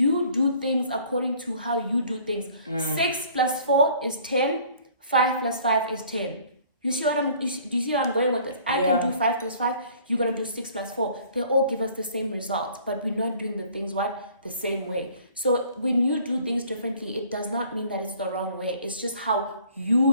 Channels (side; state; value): both; inverted; correlation -0.54